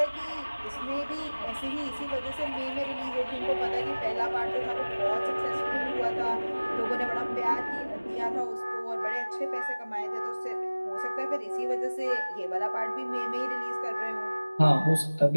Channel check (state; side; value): inverted; both; correlation -1.00